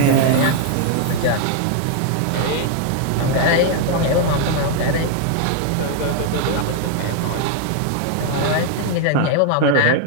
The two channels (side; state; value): both; different; correlation 0.00